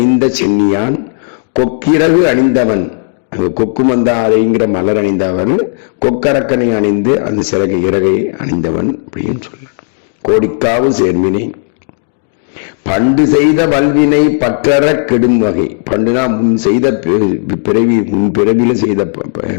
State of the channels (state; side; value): silent; right; digital silence